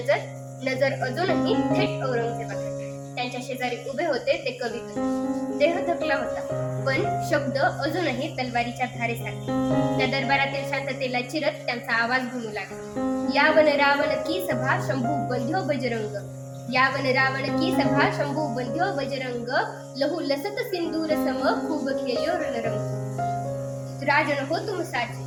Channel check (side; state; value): both; identical; correlation 1.00